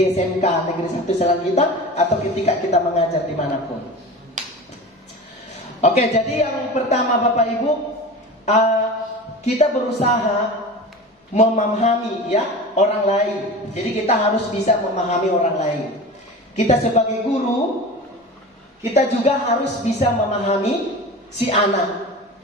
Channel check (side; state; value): both; normal; correlation 0.32